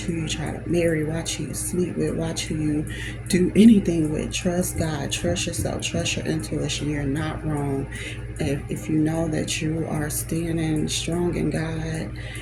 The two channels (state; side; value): identical; both; correlation 1.00